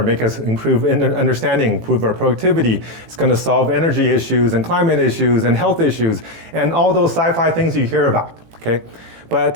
make us improve in understanding, improve our productivity. It's going to solve energy issues and climate issues and health issues and all those sci-fi things you hear about. Okay,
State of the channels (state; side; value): late; left; 18 ms